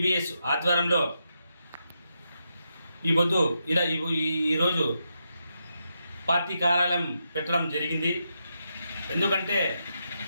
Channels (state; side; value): inverted; both; correlation -0.84